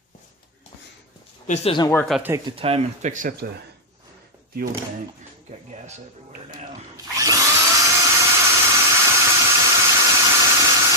If this doesn't work, I'll take the time and fix up the fuel tank. Got gas everywhere now.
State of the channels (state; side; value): normal; both; correlation -0.03